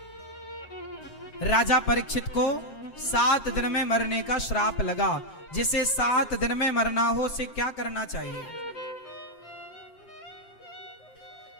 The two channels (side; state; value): right; late; 7.6 ms